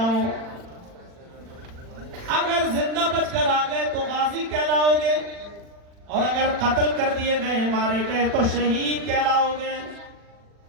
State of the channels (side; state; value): left; late; 40 ms